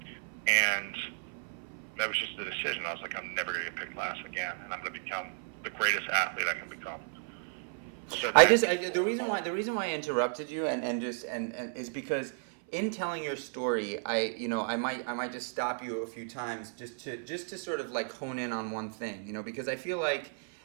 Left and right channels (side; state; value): left; silent; 56 dB below the other